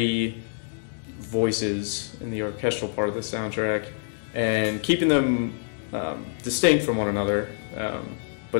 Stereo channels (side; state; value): right; silent; digital silence